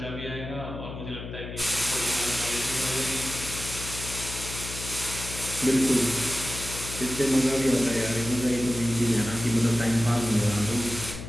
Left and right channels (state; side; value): noise; left; hum, 9 dB below the sound